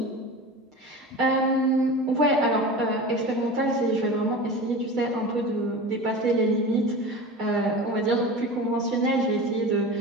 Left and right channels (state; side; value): normal; both; correlation 0.32